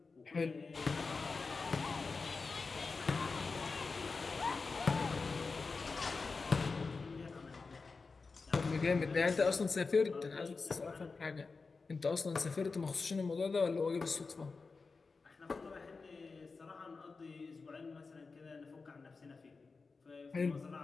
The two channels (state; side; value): quieter; right; 4.3 dB